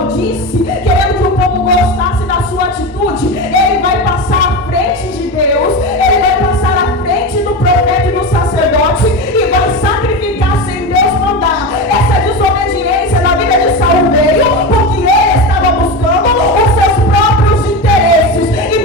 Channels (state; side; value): normal; both; correlation 0.21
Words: querendo que o povo gostasse da sua atitude, ele vai passar à frente de Deus, ele vai passar à frente do profeta e do sacerdote e vai sacrificar sem Deus mandar. Essa desobediência na vida de Saul veio porque ele estava buscando os seus próprios interesses.